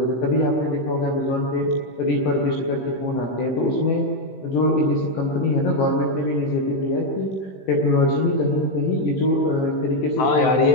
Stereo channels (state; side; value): late; right; 16 ms